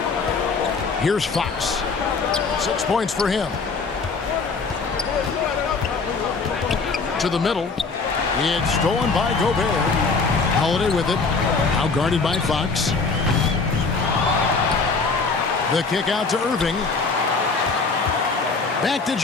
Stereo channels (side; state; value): right; quieter; 4.4 dB